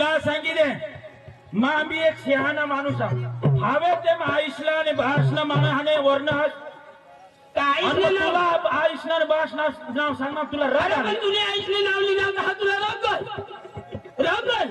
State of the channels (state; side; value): identical; both; correlation 1.00